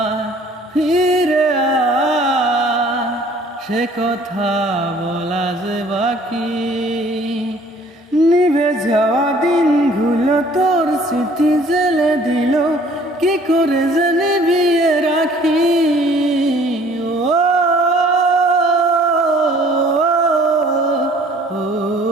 ফিরে সে কথা বলা যে বাকি। নিভে যাওয়া দিনগুলো তোর স্মৃতি জেলে দিল, কি করে যে নিভিয়ে রাখি।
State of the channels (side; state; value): both; normal; correlation 0.55